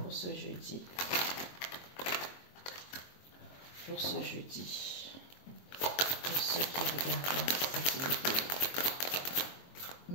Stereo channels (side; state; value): right; late; 22 ms